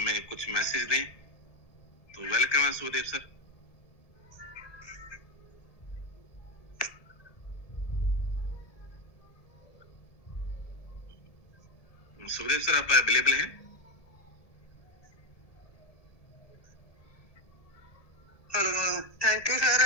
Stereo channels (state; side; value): late; right; 1.7 ms